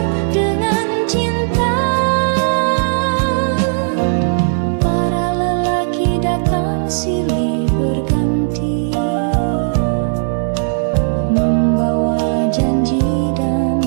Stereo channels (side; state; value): left; silent; 60 dB below the other